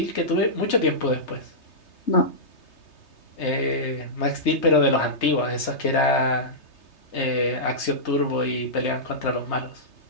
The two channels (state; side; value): late; right; 3.3 ms